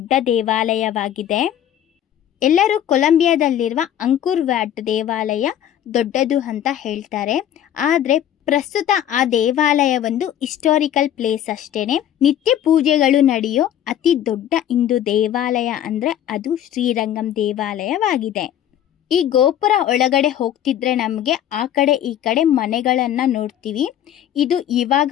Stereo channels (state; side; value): quieter; right; 10.7 dB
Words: ದೇವಾಲಯವಾಗಿದೆ. ಎಲ್ಲರೂ ಕೊಲಂಬಿಯಾದಲ್ಲಿರುವ ಅಂಕುರ್ ವ್ಯಾಟ್ ದೇವಾಲಯ ದೊಡ್ಡದು ಅಂತ ಹೇಳ್ತಾರೆ. ಆದರೆ ಪ್ರಸ್ತುತ ಆ ದೇವಾಲಯ ಒಂದು ಹಿಸ್ಟಾರಿಕಲ್ ಪ್ಲೇಸ್ ಅಷ್ಟೇನೆ. ನಿತ್ಯ ಪೂಜೆಗಳು ನಡೆಯೋ ಅತಿ ದೊಡ್ಡ ಹಿಂದೂ ದೇವಾಲಯ ಅಂದರೆ ಅದು ಶ್ರೀರಂಗಂ ದೇವಾಲಯವಾಗಿದೆ. ಈ ಗೋಪುರ ಒಳಗಡೆ ಹೋಗ್ತಿದ್ರೆ ನಮಗೆ ಆ ಕಡೆ ಈ ಕಡೆ ಮನೆಗಳನ್ನು ನೋಡ್ತೀವಿ. ಇದು ಇವಾಗ